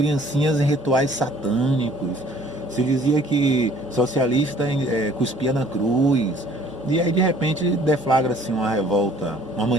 em rituais satânicos. Se dizia que socialista cuspia na cruz. E aí, de repente, deflagra-se uma revolta, uma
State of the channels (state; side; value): normal; both; correlation 0.56